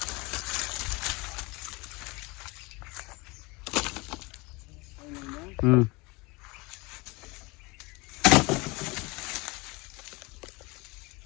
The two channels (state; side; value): quieter; right; 25.5 dB